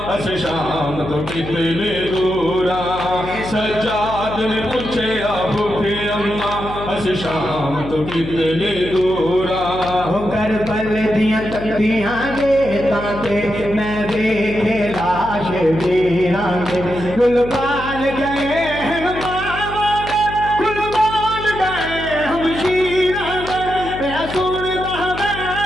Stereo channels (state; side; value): noise; left; hum, 11 dB below the sound